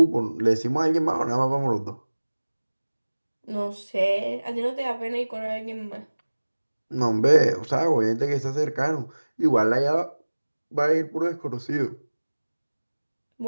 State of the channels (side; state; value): both; inverted; correlation -1.00